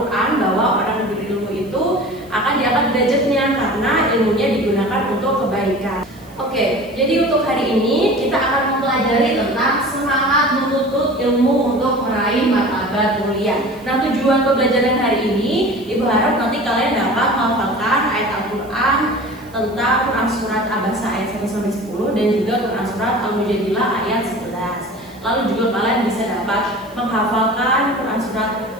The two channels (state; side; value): noise; right; hiss, 27 dB below the sound